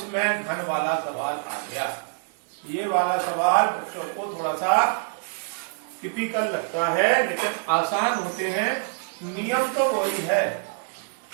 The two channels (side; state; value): left; silent; digital silence